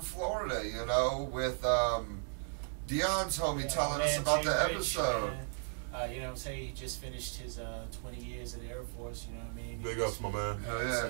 Florida, you know, with Dion's homie telling us Man, about Jay the Rich, episode. man. You know what I'm saying? He just finished his 20 years at the Air Force, you know what I mean? Big ups, my man. Hell So, yeah!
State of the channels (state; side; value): silent; left; 54 dB below the other